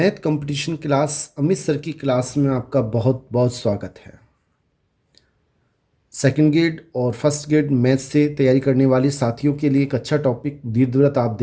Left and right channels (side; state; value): both; identical; correlation 1.00